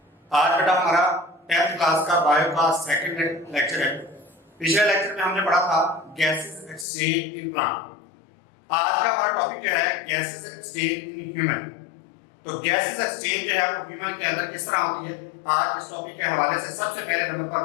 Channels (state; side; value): drops out; right; at 6.9 s